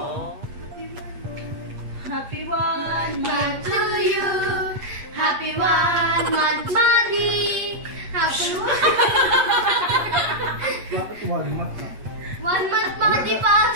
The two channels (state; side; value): late; left; 8.4 ms